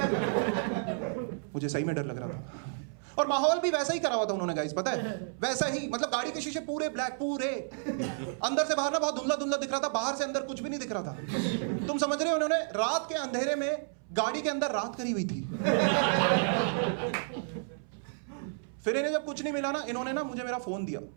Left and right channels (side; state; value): left; silent; 57 dB below the other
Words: मुझे सही में डर लग रहा था। और माहौल भी वैसा ही करा हुआ था उन्होंने गाइस, पता है, वैसा ही। मतलब गाड़ी के शीशे पूरे ब्लैक, पूरे अंदर से बाहर ना बहुत धुंधला धुंधला दिख रहा था, बाहर से अंदर कुछ भी नहीं दिख रहा था। तुम समझ रहे हो, उन्होंने रात के अंधेरे में गाड़ी के अंदर रात करी हुई थी। फिर इन्हें जब कुछ नहीं मिला ना, इन्होंने ना मुझे मेरा फोन दिया,